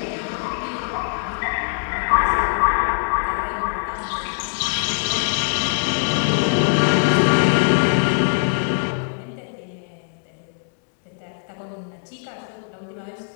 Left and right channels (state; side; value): silent; right; 60 dB below the other